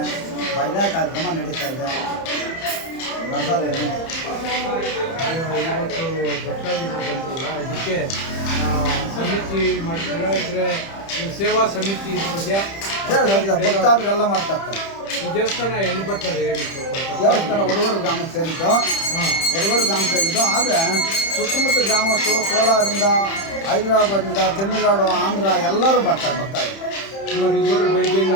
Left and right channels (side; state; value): right; late; 30 ms